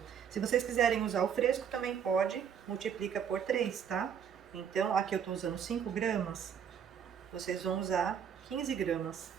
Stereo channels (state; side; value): quieter; left; 8.0 dB